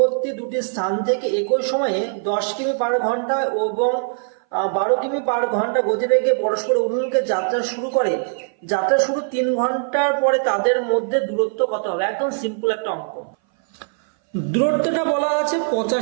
দুটি স্থান থেকে একই সময়ে 10 কিমি পার ঘন্টা এবং 12 কিমি পার ঘন্টা গতিবেগে পরস্পর অভিমুখে যাত্রা শুরু করে। যাত্রা শুরু 3 ঘন্টার পরে তাদের মধ্যে দূরত্ব কত হবে? একদম সিম্পল একটা অঙ্ক। দূরত্বটা বলা আছে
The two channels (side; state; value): left; silent; 60 dB below the other